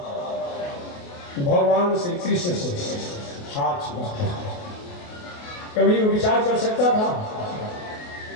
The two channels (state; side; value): late; right; 28 ms